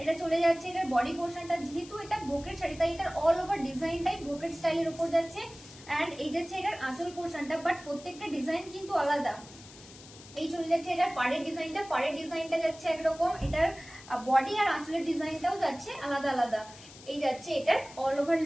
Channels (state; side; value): noise; left; hiss, 19 dB below the sound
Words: এটা চলে যাচ্ছে এটার বডি পোর্শনটা, যেহেতু এটা ব্রোকেড শাড়ি তাই এটার অল ওভার ডিজাইনটাই ব্রোকেড স্টাইলের উপর যাচ্ছে। এন্ড এই যাচ্ছে এটার আঁচল পোর্শনটা, বাট প্রত্যেকটা ডিজাইন কিন্তু আলাদা। এই চলে যাচ্ছে এটার পাড়ের ডিজাইনটা, পাড়ের ডিজাইনটা যাচ্ছে একরকম, এটার বডি আর আঁচলের ডিজাইনটাও যাচ্ছে আলাদা আলাদা। এই যাচ্ছে এটার অল ওভার